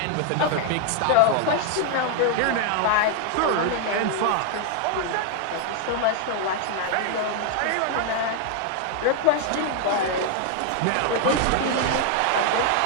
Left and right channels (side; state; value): both; different; correlation 0.00